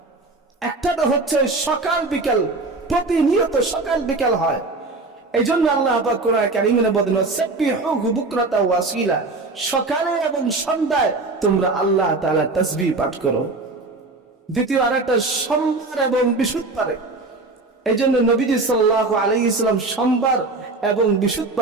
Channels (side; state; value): left; quieter; 3.4 dB